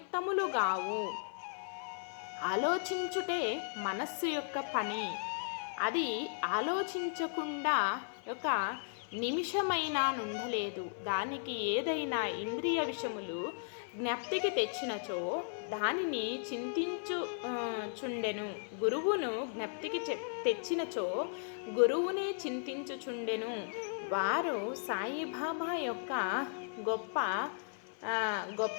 ఆలోచించుటే మనస్సు యొక్క పని. అది ఆలోచించకుండా ఒక నిమిషమైనా నుండలేదు. దానికి ఏదైనా ఇంద్రియ విషయములు జ్ఞప్తికి తెచ్చినచో దానిని చింతించుచుండెను. గురువును జ్ఞప్తికి తెచ్చినచో గురువునే చింతించుచుండెను. వారు సాయిబాబా యొక్క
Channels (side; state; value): right; silent; 54 dB below the other